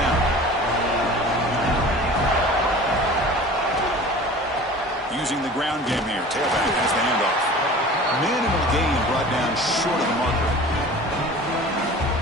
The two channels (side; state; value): both; normal; correlation 0.41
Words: Using the ground game here. Tailback has the handoff. Minimal gain brought down short of the marker.